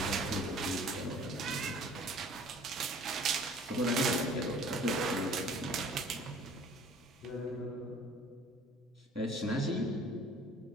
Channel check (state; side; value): normal; both; correlation 0.51